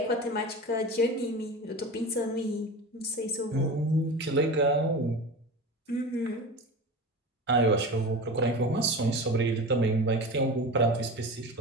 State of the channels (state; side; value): normal; both; correlation 0.30